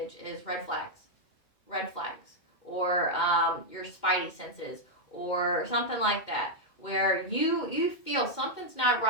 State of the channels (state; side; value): late; right; 2.2 ms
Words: is red flags. Red flags. or your spidey senses or something like that, where you feel something's not